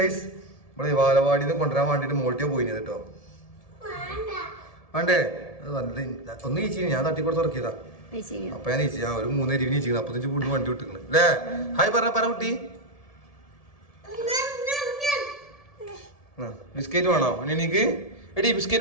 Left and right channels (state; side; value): late; right; 1.7 ms